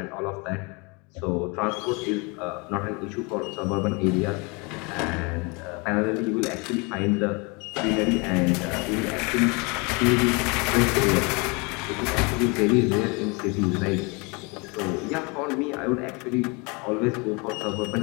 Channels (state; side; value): quieter; right; 29.3 dB